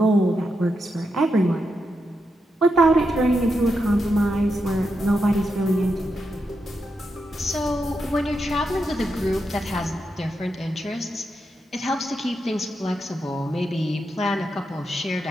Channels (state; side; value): normal; both; correlation 0.85